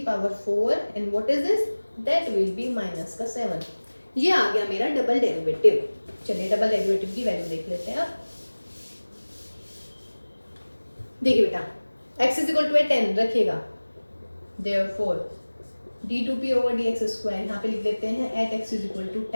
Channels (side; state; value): both; inverted; correlation -1.00